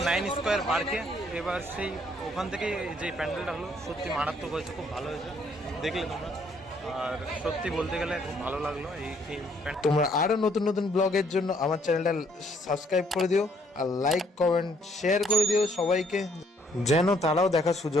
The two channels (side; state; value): both; normal; correlation 0.66